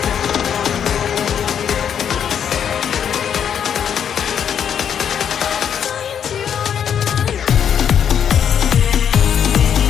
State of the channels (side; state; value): right; quieter; 8.5 dB